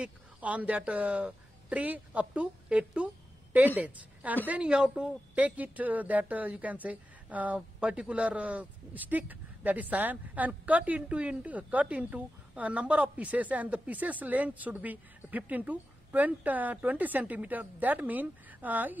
on that tree up to 8 to 10 days, and then you have to take it that you can say particular stick, that is cyan, and cut into a number of pieces, and the pieces length should be 15 to 20 centimeter. That means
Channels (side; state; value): both; normal; correlation 0.92